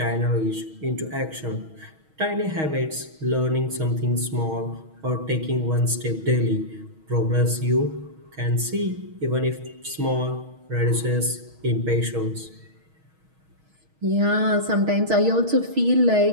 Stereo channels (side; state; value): left; late; 6.3 ms